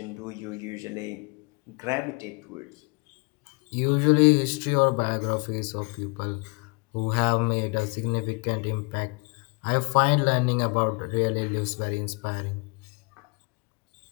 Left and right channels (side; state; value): right; quieter; 32.4 dB